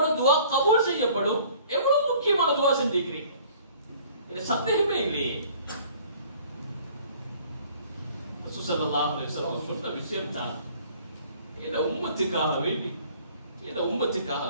துஆ கபூல் செய்யப்படும், எவ்வளவு முக்கியமான துஆ செஞ்சிக்கிறீங்க, இது சந்தேகமே இல்லையே. ரசூல் ஸல்லல்லாஹு அலைஹி வஸல்லம் சொன்ன விஷயம் தான், இந்த உம்மத்துக்காக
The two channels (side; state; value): both; inverted; correlation -0.53